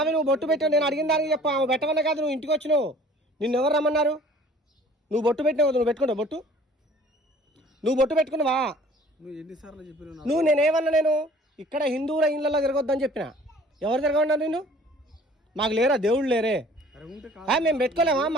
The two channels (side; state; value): both; normal; correlation 0.52